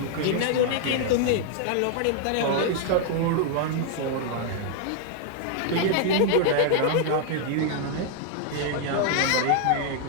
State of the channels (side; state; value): both; different; correlation 0.00